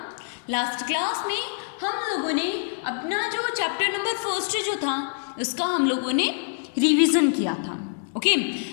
लास्ट क्लास में हम लोगों ने अपना जो चैप्टर नंबर फर्स्ट जो था उसका हम लोगों ने रिवीजन किया था। ओके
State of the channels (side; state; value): right; silent; digital silence